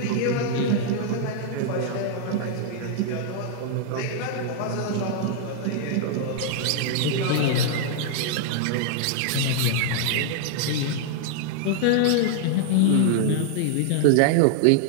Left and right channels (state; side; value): different; both; correlation -0.01